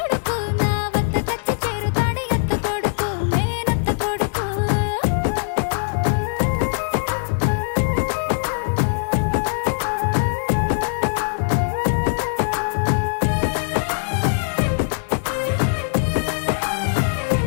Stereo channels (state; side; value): silent; right; digital silence